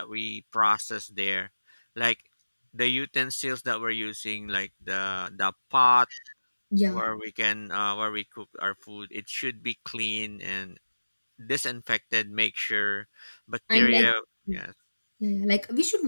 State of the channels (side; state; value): both; inverted; correlation -1.00